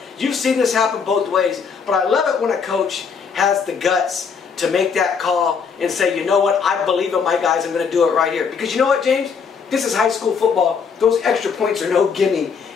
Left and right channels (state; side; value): quieter; right; 6.0 dB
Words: You've seen this happen both ways. But I love it when a coach has the guts to make that call and say, you know what, I believe in my guys, I'm going to do it right here. Because you know what, James? This is high school football. Those extra points are no gimme.